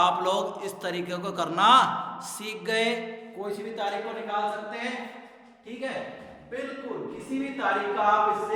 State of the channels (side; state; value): both; identical; correlation 1.00